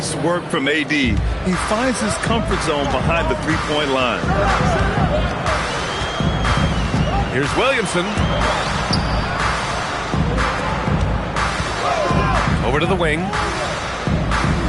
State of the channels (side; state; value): both; identical; correlation 1.00